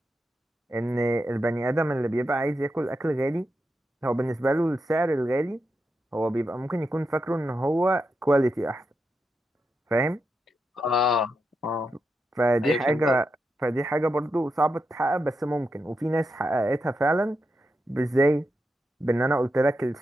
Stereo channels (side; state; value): both; normal; correlation 0.86